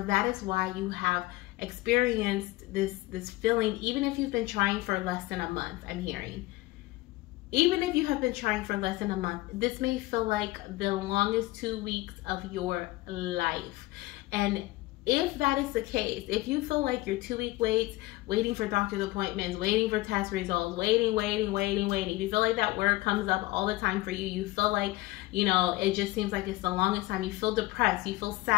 that is why you have experienced this feeling, even if you've been trying for less than a month. I'm hearing, even if you have been trying for less than a month, this may feel like the longest 2 weeks of your life. And if that is the case, if you feel like your 2 week waits, waiting for doctor's appointments, waiting for test results, waiting, if you feel like that word comes up all the time for you, you feel like, you know, it just seems like it's the longest time, you feel depressed, you feel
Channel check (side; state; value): right; quieter; 19.4 dB